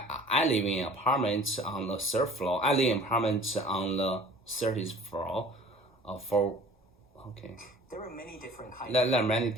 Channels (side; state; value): both; normal; correlation 0.48